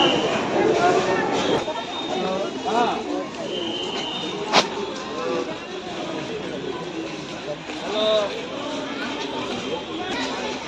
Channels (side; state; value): both; identical; correlation 1.00